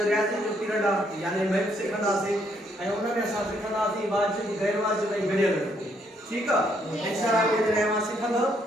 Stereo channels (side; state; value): both; normal; correlation 0.71